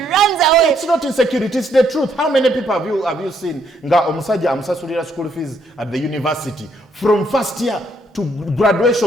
away. It's not insecurity, it's the truth. How many people have you seen? Nga omusaja amusasulira school fees at the university. From first year to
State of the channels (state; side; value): normal; both; correlation 0.71